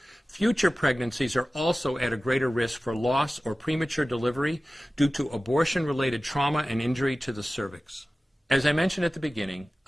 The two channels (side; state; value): both; normal; correlation 0.96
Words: Future pregnancies are also at a greater risk for loss or premature delivery due to abortion-related trauma and injury to the cervix. As I mentioned at the beginning,